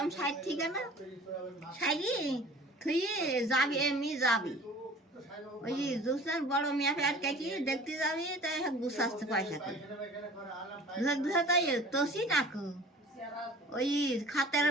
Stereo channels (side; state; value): both; normal; correlation 0.45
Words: সাইড থেকে না সাইডি তুই যাবি এমনি যাবি ওই দুসরার বড় মিয়া ফের কি দেখতে যাবি তাই গুছাচ্ছে পয়সা করে দুসরা তাই তোষি নাকু ওই খাতের